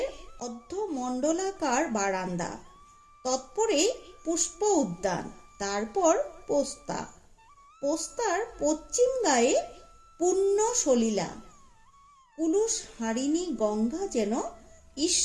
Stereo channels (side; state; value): both; identical; correlation 1.00